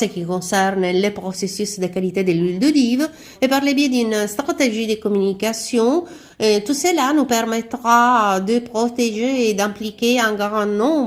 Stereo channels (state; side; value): identical; both; correlation 1.00